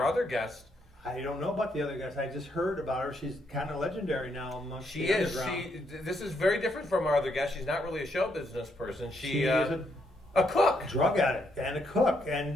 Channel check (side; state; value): both; normal; correlation 0.76